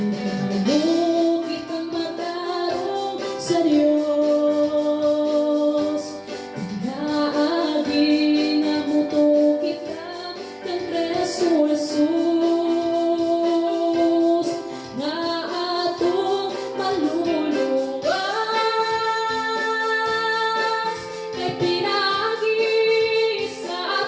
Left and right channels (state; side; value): identical; both; correlation 1.00